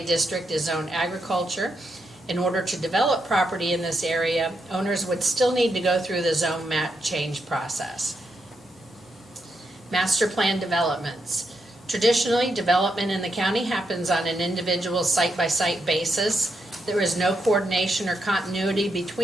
district is zoned agriculture. In order to develop property in this area, owners would still need to go through the zone map change process. Master plan developments. Traditionally, development in the county happens on an individual site-by-site basis. There is no coordination or continuity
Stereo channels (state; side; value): normal; both; correlation 0.82